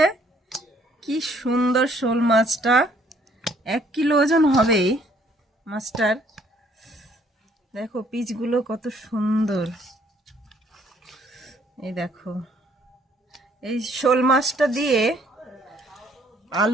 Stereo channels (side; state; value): both; normal; correlation 0.63